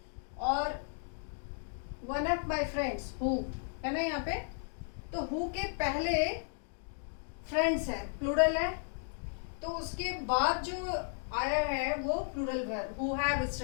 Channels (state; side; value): silent; right; 55 dB below the other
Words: और one of my friends who है ना यहाँ पे, तो हु के पहले फ्रेंड्स है, प्लूरल है, तो उसके बाद जो आया है वो plural verb who have